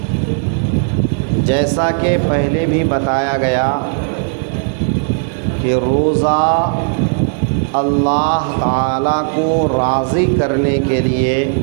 جیسا کہ پہلے بھی بتایا گیا کہ روزہ اللہ تعالیٰ کو راضی کرنے کے لیے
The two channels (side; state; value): left; silent; digital silence